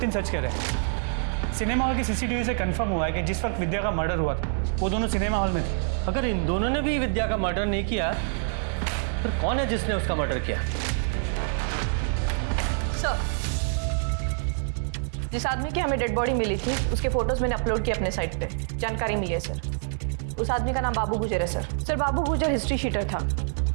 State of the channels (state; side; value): silent; left; digital silence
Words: सच कह रहे हैं। सिनेमा हॉल की सीसीटीवी से कंफर्म हुआ है कि जिस वक्त विद्या का मर्डर हुआ था वो दोनों सिनेमा हॉल में थे। अगर इन दोनों ने भी विद्या का मर्डर नहीं किया, फिर कौन है जिसने उसका मर्डर किया? जिस आदमी की हमें डेड बॉडी मिली थी उसके फोटोज मैंने अपलोड किए अपने साइट पे। जानकारी मिली है सर। उस आदमी का नाम बाबू गुजर है सर। सर बाबू गुजर हिस्ट्री शीटर था।